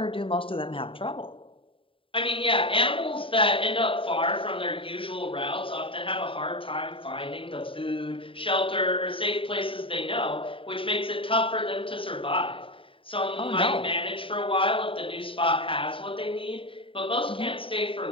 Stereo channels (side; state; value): right; late; 0.25 ms